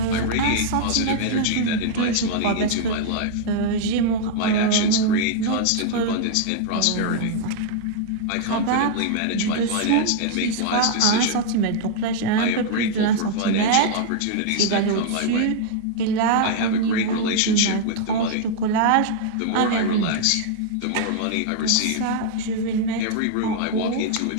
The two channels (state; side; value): different; both; correlation -0.01